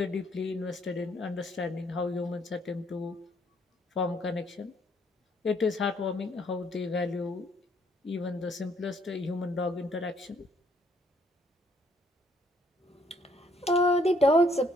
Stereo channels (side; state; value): both; normal; correlation 0.67